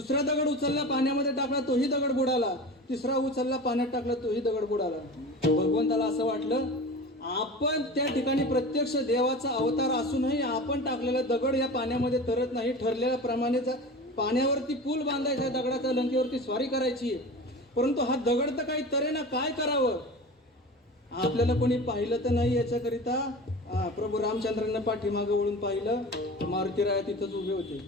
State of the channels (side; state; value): both; normal; correlation 0.33